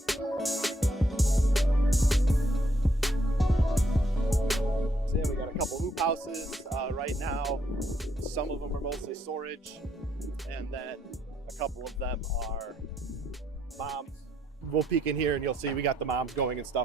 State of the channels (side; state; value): both; normal; correlation 0.73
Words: So yeah, we got a couple hoop houses right now. Some of them are mostly storage, and then a couple of them are moms. We'll peek in here and you'll see we got the moms going and